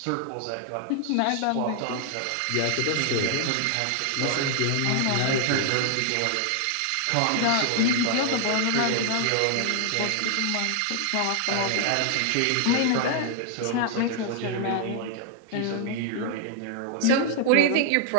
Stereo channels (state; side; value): different; both; correlation 0.00